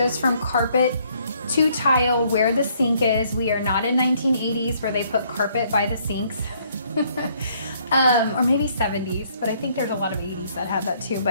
from carpet to tile where the sink is. We are not in 1980s where they put carpet by the sinks. Or maybe 70s, but I think there's a lot of 80s that had that too.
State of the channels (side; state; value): both; inverted; correlation -0.66